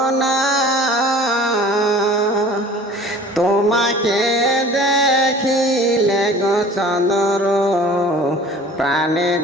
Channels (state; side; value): normal; both; correlation 0.45